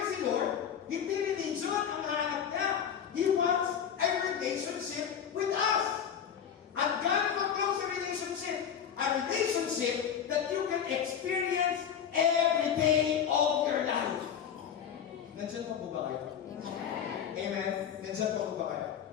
si Lord, hindi religion ang hanap niya. He wants a relationship with us. And God will close a relationship. A relationship that you can experience every day of your life. Nandiyan pa po ba kayo? Amen. Nandiyan pa po ba kayo?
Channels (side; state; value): right; quieter; 8.3 dB